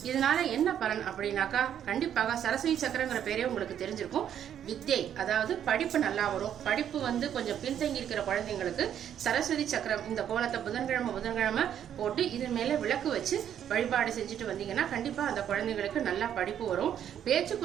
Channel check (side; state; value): left; quieter; 9.7 dB